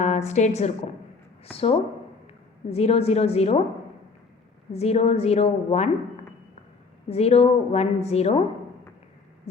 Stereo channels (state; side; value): quieter; right; 4.4 dB